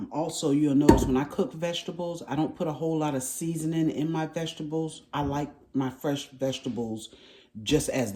you'll notice when I cook vegetables, I don't put a whole lot of seasoning in my vegetables. I like my fresh vegetables just as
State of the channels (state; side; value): identical; both; correlation 1.00